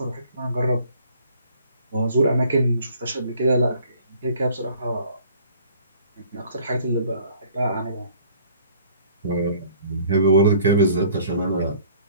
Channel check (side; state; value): both; inverted; correlation -0.55